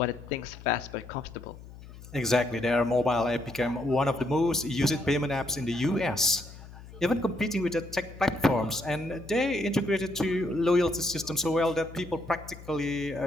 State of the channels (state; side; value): noise; left; hum, 17 dB below the sound